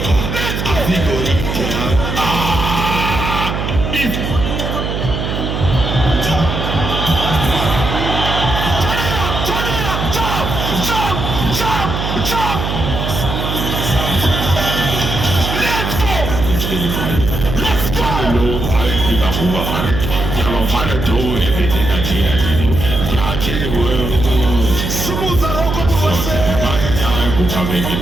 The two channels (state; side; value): noise; right; hum, 3 dB below the sound